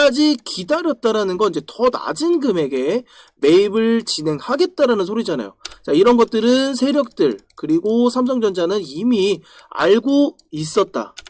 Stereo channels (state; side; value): identical; both; correlation 1.00